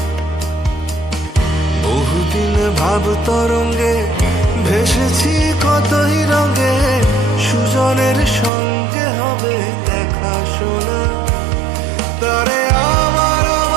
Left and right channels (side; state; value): left; drops out; at 8.5 s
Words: বহুদিন ভাব তরঙ্গে ভেসেছি কতই রঙে সুজনের সঙ্গে হবে দেখা শোনা তারে আমার